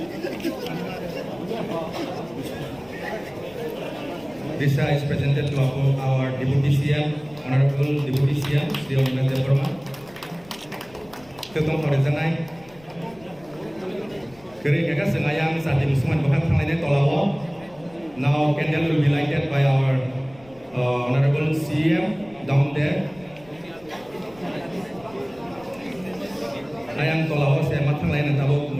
This is presented to our Deputy CM, Honorable Deputy CM, Sri Onmes Devarma. Ketua Horizontal. Kering kakak sengayang saat musuhan bahkan lainnya tolawo. Now candle will be lighted by our Honorable CM down there. Ayang tolawo saya matang lain tahu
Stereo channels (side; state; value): left; noise; rumble, 25 dB below the sound